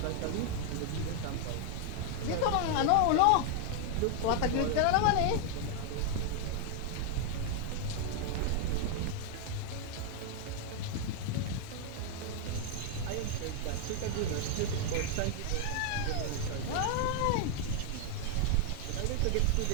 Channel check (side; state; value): both; different; correlation 0.00